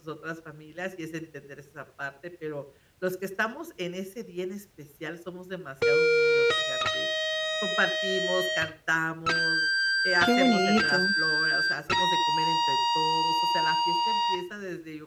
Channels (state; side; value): identical; both; correlation 1.00